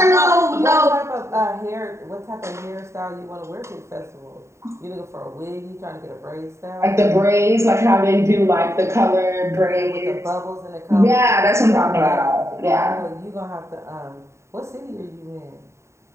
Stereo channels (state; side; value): late; left; 0.14 ms